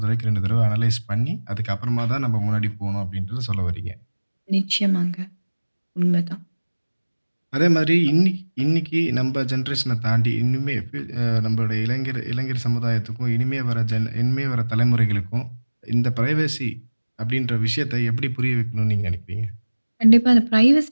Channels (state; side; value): inverted; both; correlation -1.00